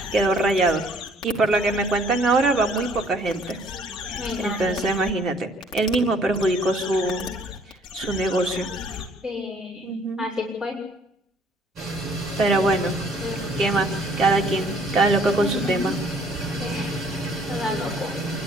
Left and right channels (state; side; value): normal; both; correlation 0.59